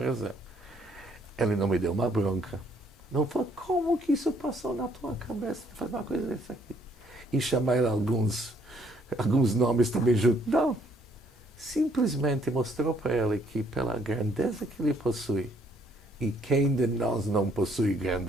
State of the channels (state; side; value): normal; both; correlation 0.66